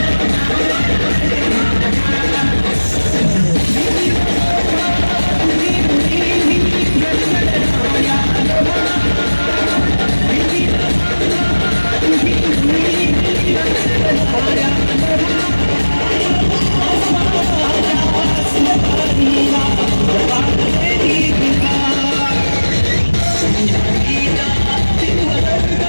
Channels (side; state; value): both; inverted; correlation -1.00